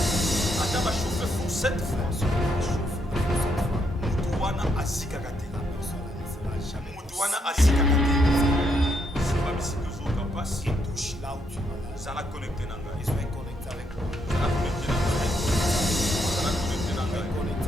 Ata ba chauffer pour cette fois. même si on a chauffé pour cette fois, Mutuana azikaka te. la personne ne sera jamais Mutuana azikaka te. C'est pas ici que zo passe. qui touche là où tu vas là. Ça la connecté nanga. Ils sont connectés avec moi. Ça la connecté nanga. Ça la connecté nanga.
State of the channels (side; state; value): both; normal; correlation 0.76